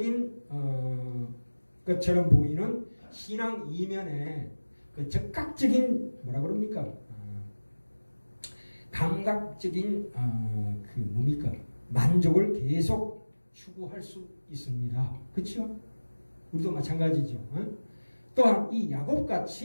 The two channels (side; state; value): both; inverted; correlation -1.00